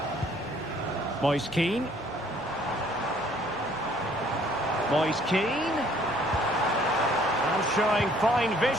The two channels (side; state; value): left; noise; rumble, 22 dB below the sound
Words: Moise Kean. Moise Kean. And showing fine